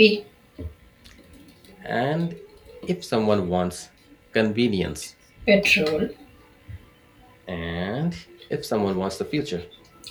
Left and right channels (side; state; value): both; identical; correlation 1.00